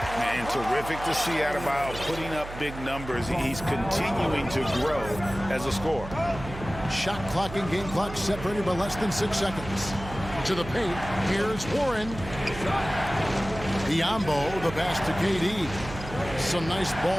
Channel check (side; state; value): right; noise; hum, 11 dB below the sound